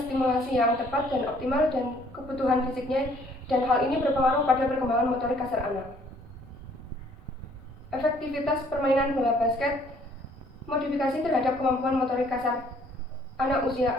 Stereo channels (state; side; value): normal; both; correlation 0.60